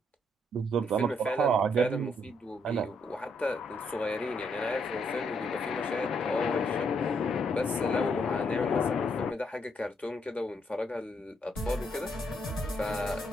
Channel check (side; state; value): both; normal; correlation 0.74